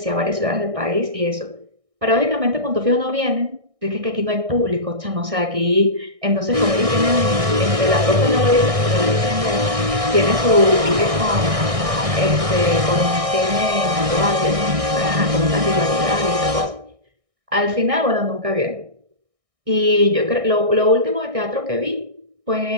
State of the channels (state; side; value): late; left; 1.6 ms